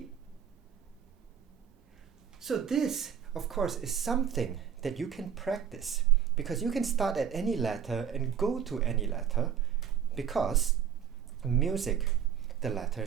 So this, of course, is something that you can practice, because you can start at any letter and go to any letter, because music, the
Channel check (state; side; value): quieter; left; 8.4 dB